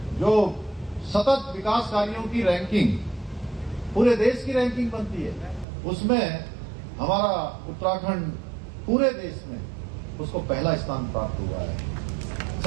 जो सतत विकास कार्यों की रैंकिंग, पूरे देश की रैंकिंग बनती है, उसमें हमारा उत्तराखंड पूरे देश में उसको पहला स्थान प्राप्त हुआ है।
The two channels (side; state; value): left; drops out; at 5.7 s